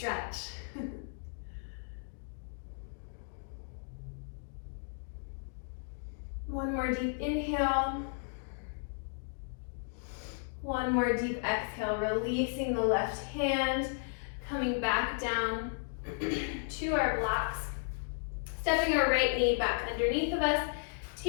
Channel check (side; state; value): right; silent; digital silence